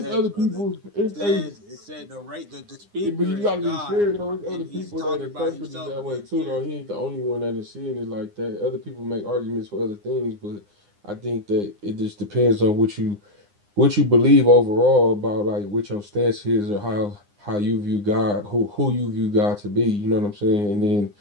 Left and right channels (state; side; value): late; left; 9.8 ms